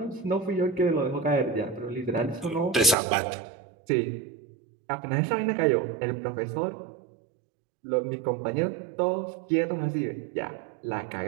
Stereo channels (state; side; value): drops out; left; at 3.0 s